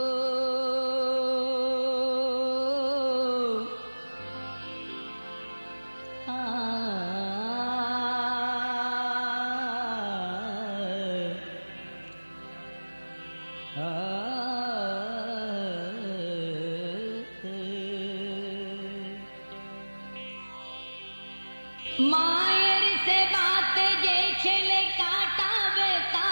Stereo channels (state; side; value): inverted; both; correlation -1.00